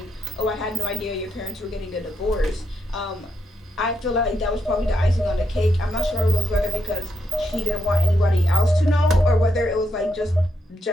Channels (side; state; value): both; normal; correlation 0.81